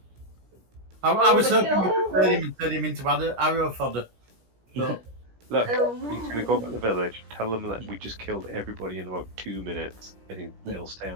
I was hoping we could turn him and turn him into arrow fodder. But Look, he's Um, going to go back to the village, tell them that we just killed everybody in about 2 minutes, and they'll stay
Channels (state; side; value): late; left; 17 ms